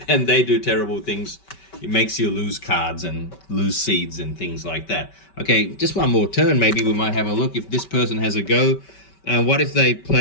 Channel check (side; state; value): right; late; 5.2 ms